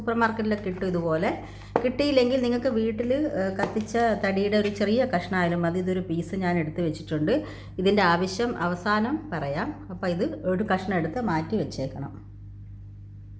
മാർക്കറ്റിലൊക്കെ കിട്ടും. ഇതുപോലെ കിട്ടിയില്ലെങ്കിൽ നിങ്ങൾക്ക് വീട്ടിൽ കത്തിച്ച തടിയുടെ ഒരു ചെറിയ കഷ്ണമായാലും മതി. ഇതൊരു പീസ് ഞാൻ എടുത്ത് വെച്ചിട്ടുണ്ട്. ഇതിൻ്റെ ആവശ്യം അവസാനം പറയാം. അപ്പോൾ ഇത് ഒരു കഷ്ണം എടുത്ത് മാറ്റി വെച്ചേക്കണം.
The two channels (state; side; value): identical; both; correlation 1.00